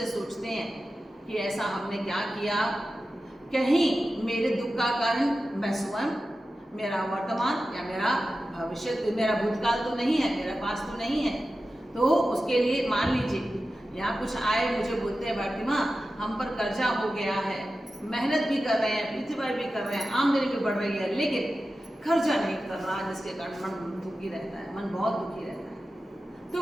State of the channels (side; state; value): both; normal; correlation 0.93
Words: सोचते हैं कि ऐसा हमने क्या किया, कहीं मेरे दुख का कारण मैं स्वयं, मेरा वर्तमान या मेरा भविष्य, मेरा भूतकाल तो नहीं है, मेरा पास तो नहीं है। तो उसके लिए मान लीजिए यहाँ कुछ आए, मुझे बोलते हैं भारती माँ हम पर कर्जा हो गया है, मेहनत भी कर रहे हैं, पितृवाई भी कर रहे हैं, आमदनी भी बढ़ रही है, लेकिन खर्चा नहीं कर रहा, जिसके कारण मन दुखी रहता है, मन बहुत दुखी रहता है।